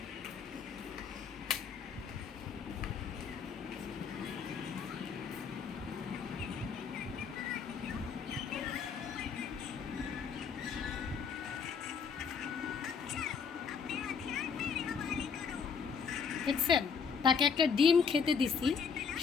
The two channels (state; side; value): quieter; right; 6.2 dB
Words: দেখছেন, তাকে একটা ডিম খেতে দিছি,